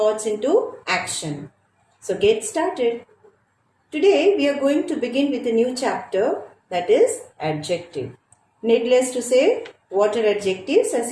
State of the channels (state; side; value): identical; both; correlation 1.00